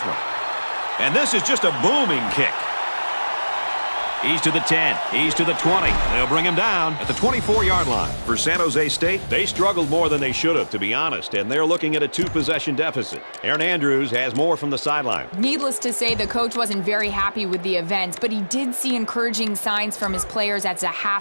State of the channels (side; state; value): both; inverted; correlation -1.00